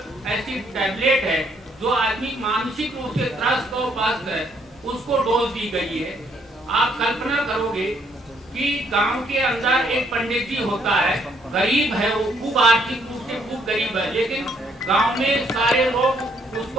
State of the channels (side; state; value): both; normal; correlation 0.69